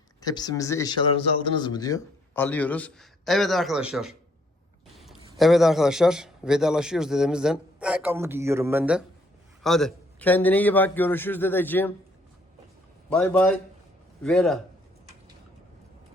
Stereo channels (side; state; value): both; normal; correlation 0.66